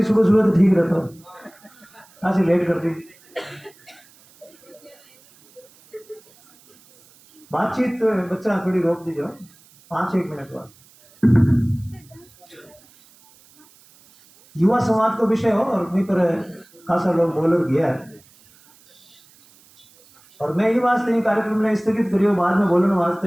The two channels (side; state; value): right; noise; hiss, 28 dB below the sound